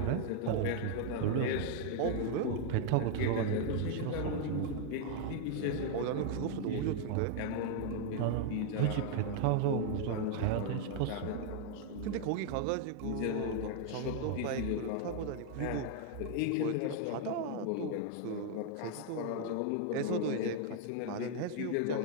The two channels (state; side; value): different; both; correlation 0.00